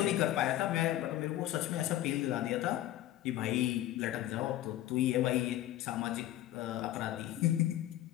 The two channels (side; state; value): right; quieter; 13.8 dB